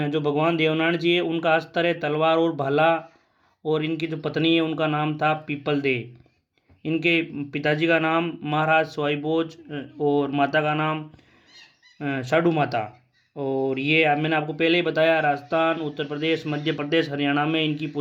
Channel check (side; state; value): both; identical; correlation 1.00